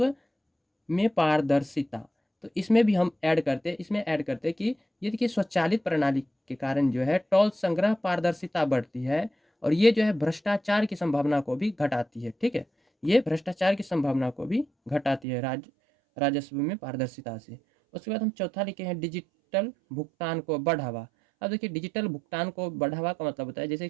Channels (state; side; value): drops out; left; at 15.2 s